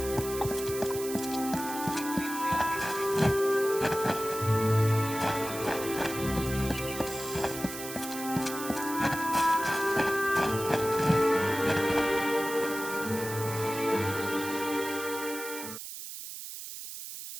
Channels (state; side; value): noise; right; hiss, 9 dB below the sound